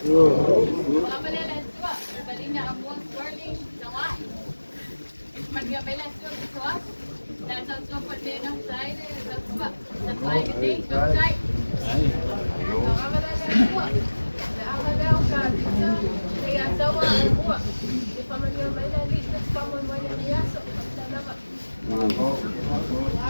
Ovale Letauā. Balinya amon swirling Tagoa'i. Mangia bela swirling soas. Dan so padena side Letauā. Letauā gede side. Ovale Letauā. Leiataua e mua. E whamangia mai la li, te whamoi mai la li aso. Tanama.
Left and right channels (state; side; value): inverted; both; correlation -1.00